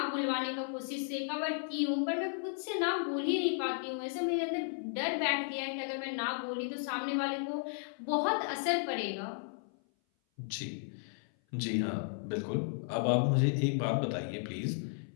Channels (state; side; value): silent; right; 55 dB below the other